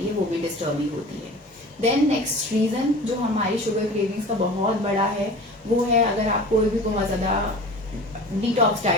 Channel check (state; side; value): normal; both; correlation 0.39